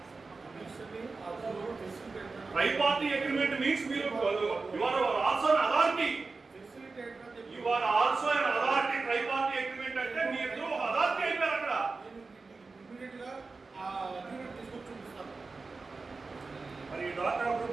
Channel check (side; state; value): left; quieter; 4.0 dB